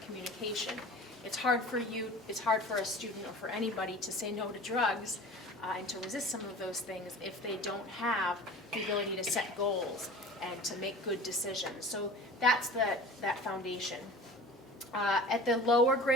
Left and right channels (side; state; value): both; normal; correlation 0.39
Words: communication. It's hard for a student or for anybody to say no to drugs and to resist some of those things if they don't have the ability to set goals and to make good decisions. So that's that foundation. At the lower